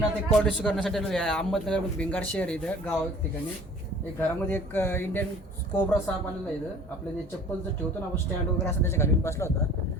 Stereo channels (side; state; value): both; normal; correlation 0.48